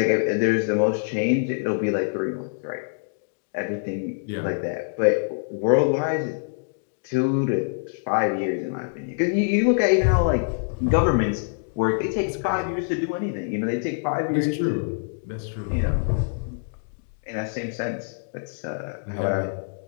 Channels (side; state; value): right; silent; digital silence